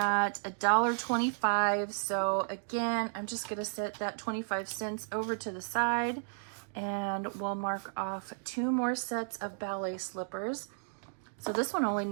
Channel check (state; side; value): silent; left; digital silence